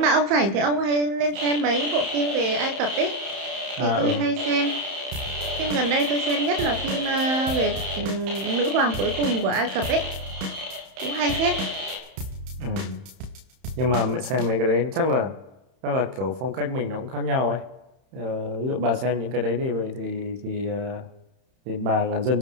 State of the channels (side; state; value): left; late; 31 ms